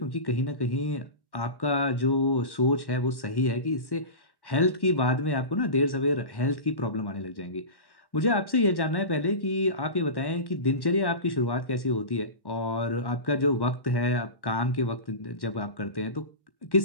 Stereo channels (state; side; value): late; right; 1.1 ms